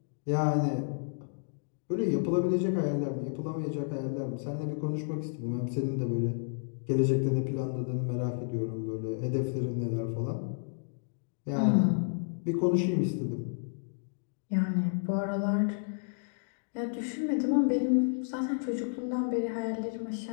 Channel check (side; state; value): right; silent; digital silence